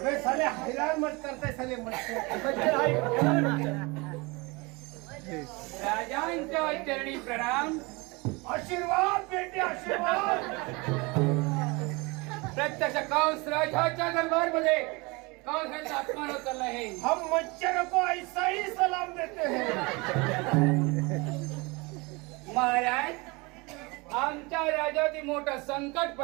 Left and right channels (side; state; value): left; quieter; 26.1 dB